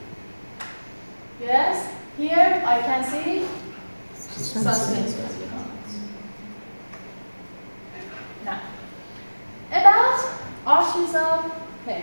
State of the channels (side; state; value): both; inverted; correlation -1.00